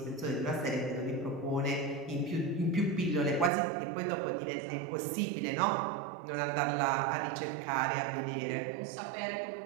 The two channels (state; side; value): drops out; left; at 3.5 s